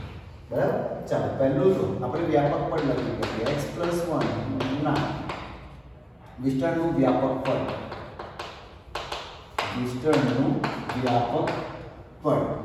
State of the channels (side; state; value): both; identical; correlation 1.00